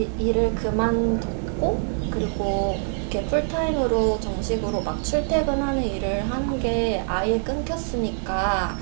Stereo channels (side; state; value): left; silent; 62 dB below the other